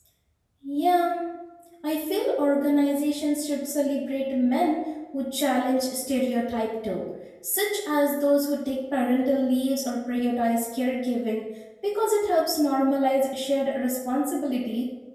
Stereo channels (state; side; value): identical; both; correlation 1.00